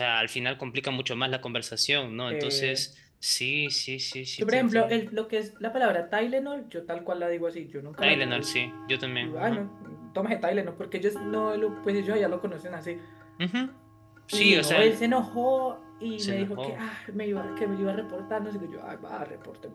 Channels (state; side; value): identical; both; correlation 1.00